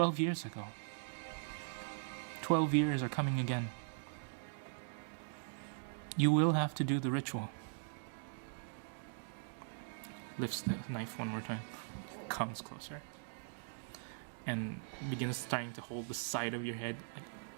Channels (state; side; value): silent; left; digital silence